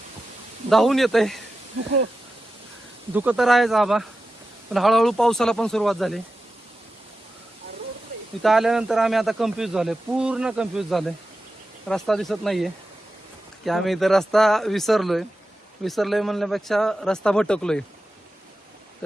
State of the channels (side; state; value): both; normal; correlation 0.92